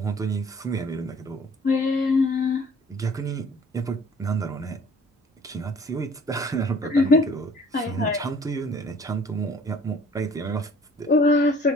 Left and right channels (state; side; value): normal; both; correlation 0.53